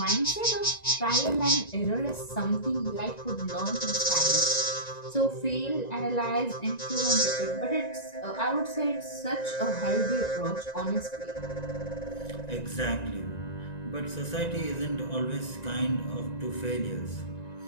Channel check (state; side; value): late; right; 1.9 ms